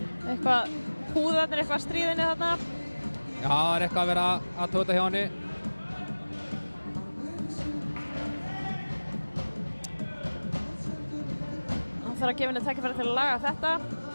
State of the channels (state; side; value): inverted; both; correlation -1.00